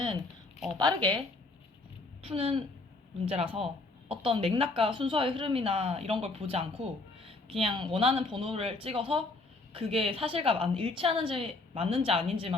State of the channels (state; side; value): quieter; right; 3.3 dB